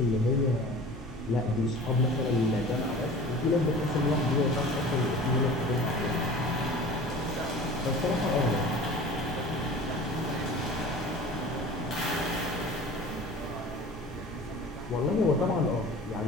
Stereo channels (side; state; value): both; normal; correlation 0.41